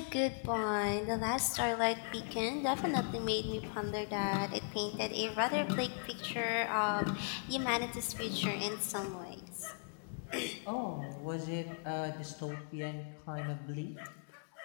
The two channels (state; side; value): silent; right; digital silence